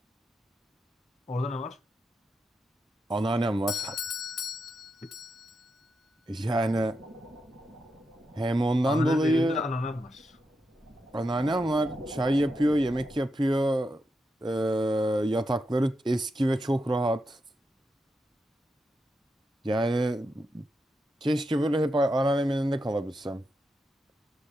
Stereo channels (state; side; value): normal; both; correlation 0.85